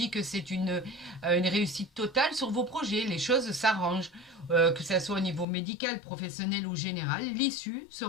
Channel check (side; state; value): right; drops out; at 5.5 s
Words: que c'est une réussite totale sur vos projets. Les choses s'arrangent, que ce soit au niveau médical, professionnel ou général. L'issue